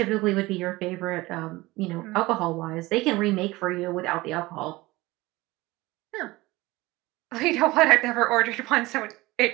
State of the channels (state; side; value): quieter; left; 20.4 dB